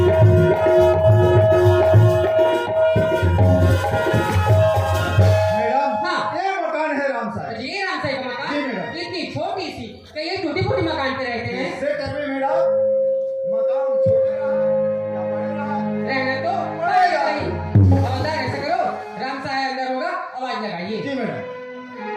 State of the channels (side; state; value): both; identical; correlation 1.00